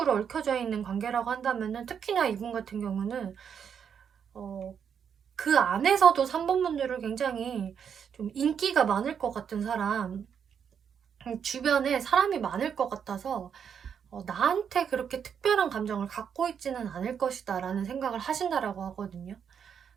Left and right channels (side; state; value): left; quieter; 7.6 dB